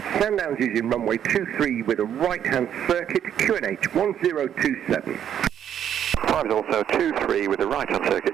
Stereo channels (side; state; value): left; quieter; 9.6 dB